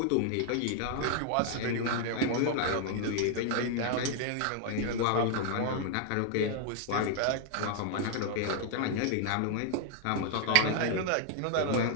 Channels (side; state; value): both; different; correlation 0.00